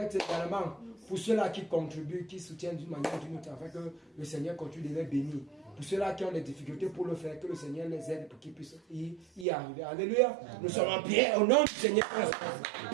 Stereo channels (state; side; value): drops out; left; at 9.5 s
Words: également pour ceux-là qui contribuent, qui soutiennent d'une manière ou d'une autre, afin que le Seigneur continue de les bénir. Pour ceux-là qui ont des difficultés pour le faire, que le Seigneur les aide pour qu'ils puissent y arriver. Alléluia. Nous sommes en prière au nom du Seigneur.